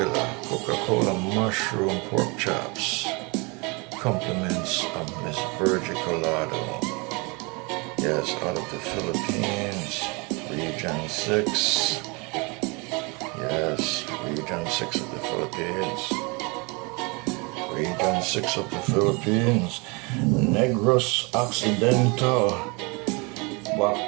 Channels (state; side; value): quieter; left; 29.3 dB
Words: Coca Cola mushroom pork chops. Compliments of Miss Virgie Colado. Yes, out of the Philippines. Region 6. Yes, Region 6 of the Philippines. Region 6 of the Philippines. Negros Occidental.